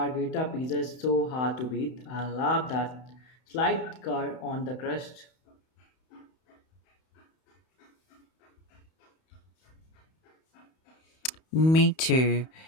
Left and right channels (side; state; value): right; late; 31 ms